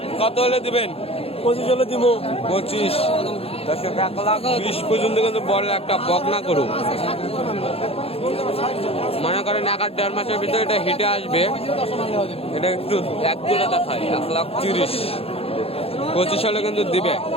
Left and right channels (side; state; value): right; late; 0.28 ms